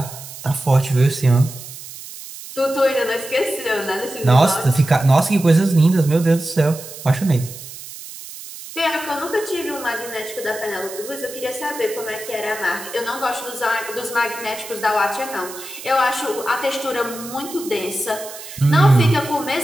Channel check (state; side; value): noise; right; hiss, 13 dB below the sound